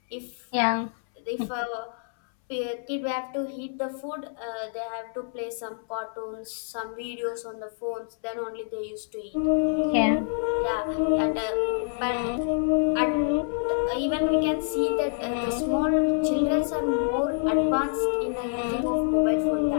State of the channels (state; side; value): silent; right; 60 dB below the other